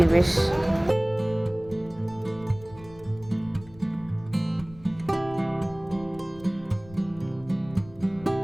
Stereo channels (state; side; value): noise; left; rumble, 21 dB below the sound